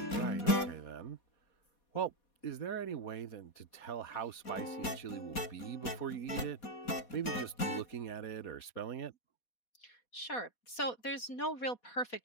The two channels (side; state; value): right; late; 4.2 ms